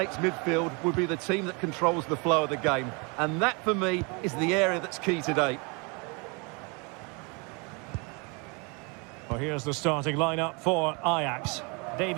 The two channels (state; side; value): quieter; left; 31.1 dB